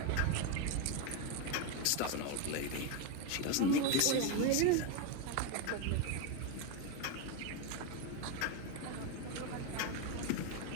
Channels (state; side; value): different; both; correlation 0.03